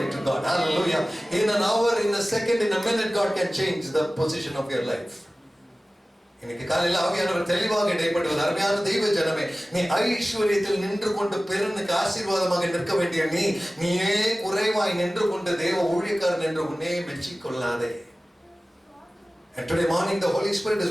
to God. Hallelujah. In an hour, in a second, in a minute, God can change the position of your life. இன்னைக்கு காலையில் ஆவியானவர் தெளிவாக இடைப்படுவது, அருமையான தெய்வ ஜனமே, நீ ஐஸ்வரியத்தில் நின்று கொண்டு பெருனுக்கு ஆசீர்வாதமாக நிற்க வேண்டிய நீயே குறைவாய் நின்று கொண்டு தேவ ஊழியக்காரன் என்று உன்னே மெச்சிக் கொள்ளாதே. And today morning the Holy Spirit is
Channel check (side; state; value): both; normal; correlation 0.97